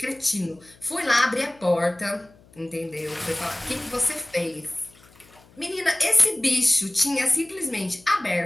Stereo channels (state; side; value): noise; left; hum, 27 dB below the sound